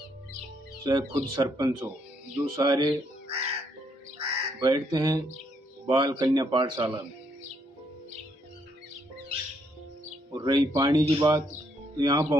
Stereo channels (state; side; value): normal; both; correlation 0.73